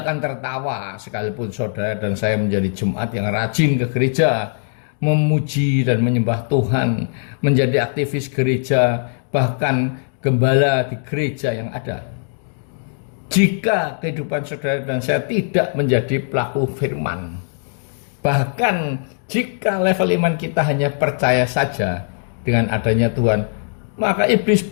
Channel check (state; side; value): silent; right; digital silence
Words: akan tertawa sekalipun saudara dan saya menjadi jemaat yang rajin ke gereja, memuji dan menyembah Tuhan, menjadi aktivis gereja, bahkan gembala di gereja yang ada. Jika kehidupan saudara dan saya tidak menjadi pelaku firman, bahkan jika level iman kita hanya percaya saja dengan adanya Tuhan, maka iblis